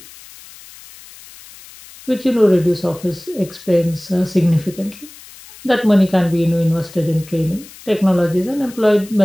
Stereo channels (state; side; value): noise; left; hiss, 20 dB below the sound